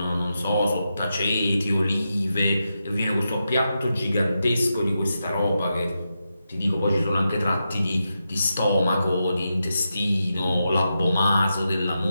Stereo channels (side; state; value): both; inverted; correlation -0.87